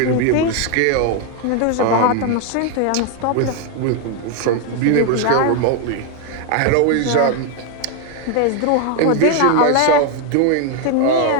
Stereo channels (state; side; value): different; both; correlation 0.01